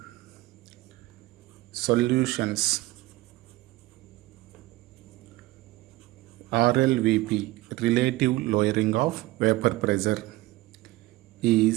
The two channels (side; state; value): left; quieter; 18.7 dB